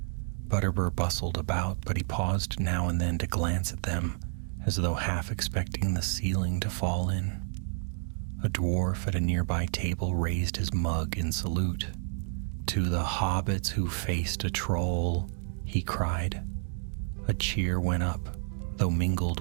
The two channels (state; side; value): silent; left; 58 dB below the other